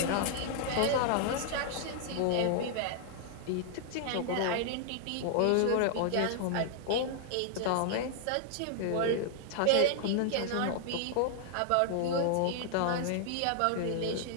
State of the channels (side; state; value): both; different; correlation 0.00